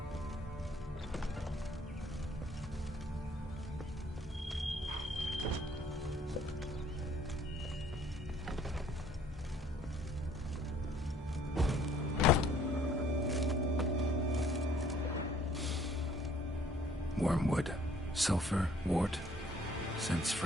Wormwood, sulfur, wart, scents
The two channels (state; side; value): normal; both; correlation 0.60